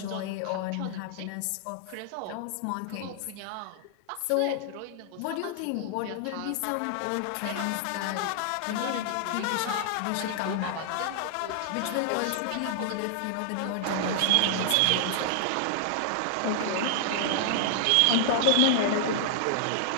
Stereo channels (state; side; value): different; both; correlation -0.01